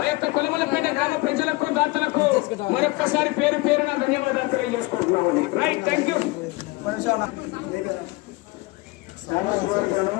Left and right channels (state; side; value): quieter; right; 22.9 dB